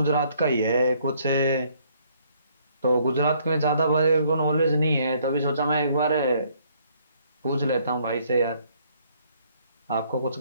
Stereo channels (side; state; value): both; inverted; correlation -0.65